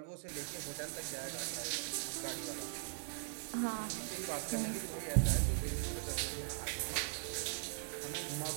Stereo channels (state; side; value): silent; left; 51 dB below the other